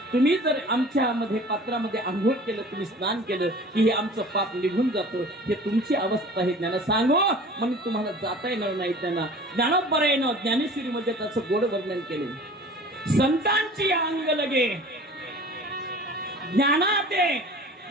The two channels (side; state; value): both; normal; correlation 0.43